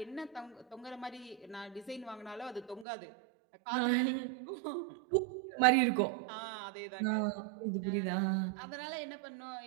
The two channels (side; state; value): left; drops out; at 2.9 s